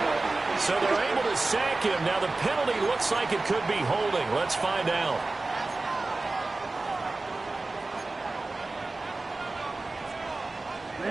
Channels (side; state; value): left; quieter; 3.3 dB